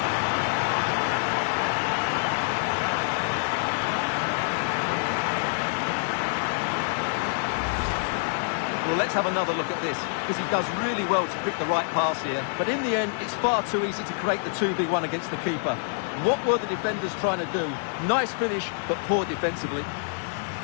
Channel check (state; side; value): silent; right; 61 dB below the other